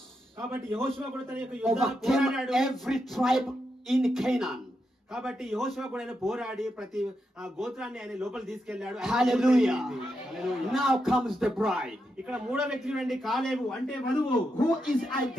కాబట్టి యెహోషువ కూడా తన యొక్క యుద్ధాలు Overcame పోరాడాడు. every tribe in Canaan. కాబట్టి యెహోషువ కూడా ఆయన పోరాడి ప్రతి గోత్రాన్ని ఆయన లోపల తీసుకెళ్లాడు. Hallelujah. Hallelujah. Now comes the bride. ఇక్కడ మూడో వ్యక్తి చూడండి, కాలేబు అంటే వధువు. Who is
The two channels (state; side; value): normal; both; correlation 0.85